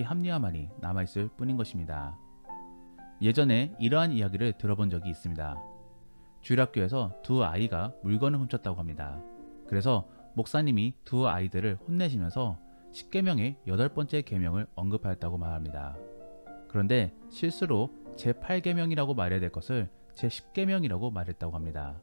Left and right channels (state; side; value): inverted; both; correlation -1.00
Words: 합리화만이 남아있을 뿐인 것입니다. 예전에 이러한 이야기를 들어본 적이 있습니다. 주일학교에서 두 아이가 물건을 훔쳤다고 합니다. 그래서 목사님이 두 아이들을 혼내시면서 10계명의 8번째 계명을 언급하였다고 말합니다. 그런데 실수로 제8계명이라고 말해야 될 것을 제10계명이라고 말했다고 합니다.